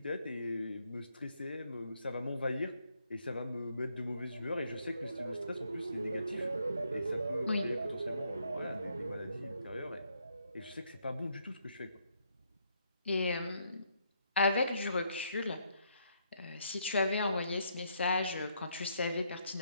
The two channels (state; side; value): inverted; both; correlation -0.73